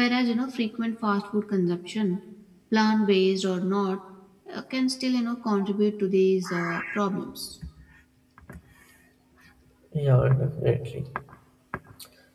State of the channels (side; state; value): both; identical; correlation 1.00